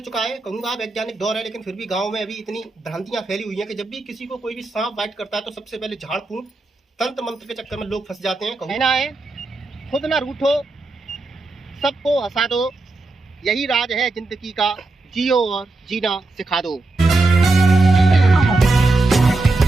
चुका है, कहूँगा वैज्ञानिक दौर है, लेकिन फिर भी गांव में अभी इतनी भ्रांतियां फैली हुई हैं कि जब भी किसी को कोई भी सांप बाइट करता है तो सबसे पहले झाड़ फूंक तंत्र मंत्र के चक्कर में लोग फंस जाते हैं। कहना है खुद ना रूठो, सबको हंसा दो, यही राज है जिंदगी का, जियो और जीना सिखा दो।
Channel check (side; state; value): left; quieter; 3.1 dB